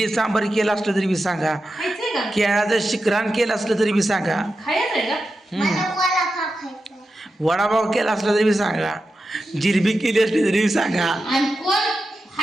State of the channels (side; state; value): both; normal; correlation 0.90